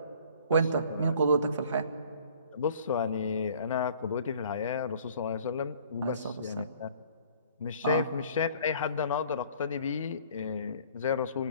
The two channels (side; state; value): both; inverted; correlation -0.53